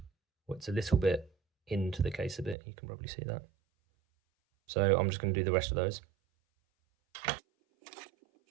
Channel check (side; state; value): left; drops out; at 2.6 s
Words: it's a little bit into the case a bit, you can probably see that. So I'm just going to do the rest of those.